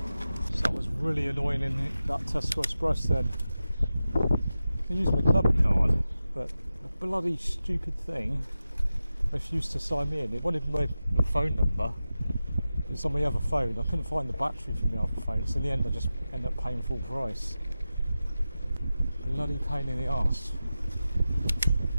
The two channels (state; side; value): inverted; both; correlation -0.93